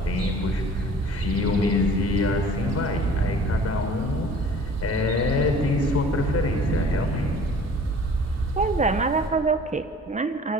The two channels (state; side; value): normal; both; correlation 0.48